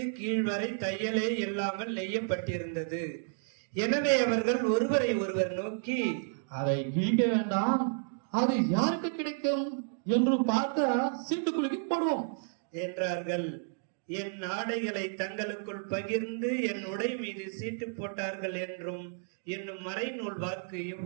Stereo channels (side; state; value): left; silent; digital silence